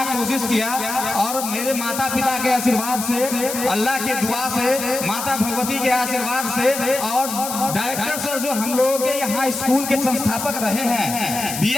कोशिश किया और मेरे माता पिता के आशीर्वाद से, अल्लाह के दुआ से, माता भगवती के आशीर्वाद से और डायरेक्टर सर जो हम लोगों के यहाँ स्कूल के संस्थापक रहे हैं,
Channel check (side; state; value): left; noise; hiss, 6 dB below the sound